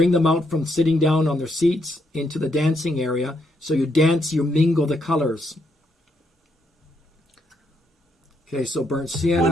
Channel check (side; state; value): both; normal; correlation 0.77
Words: out from sitting down on their seats into the dancing area. So you dance, you mingle the colors. Okay, so burnt sienna.